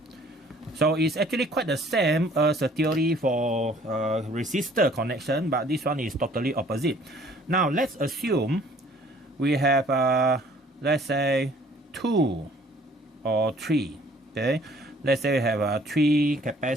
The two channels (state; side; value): normal; both; correlation 0.57